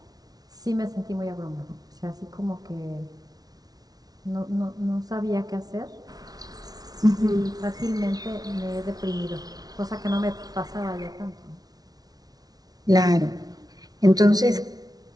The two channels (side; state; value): left; late; 0.19 ms